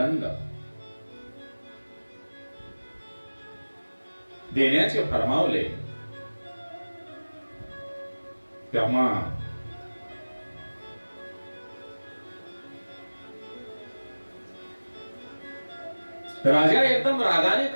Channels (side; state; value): both; inverted; correlation -1.00